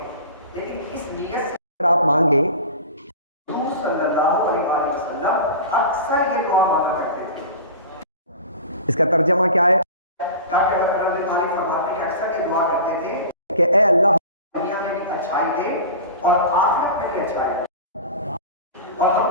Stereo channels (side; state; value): both; inverted; correlation -0.34